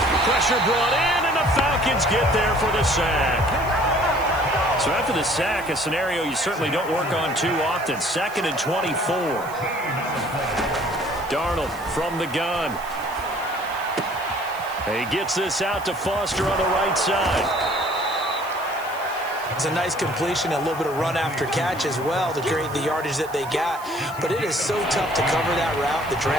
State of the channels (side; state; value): right; noise; hiss, 19 dB below the sound